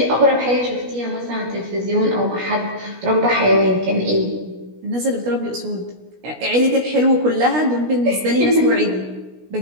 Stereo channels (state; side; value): late; left; 16 ms